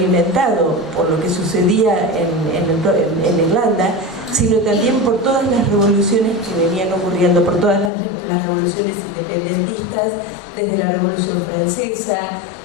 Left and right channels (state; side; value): drops out; right; at 7.9 s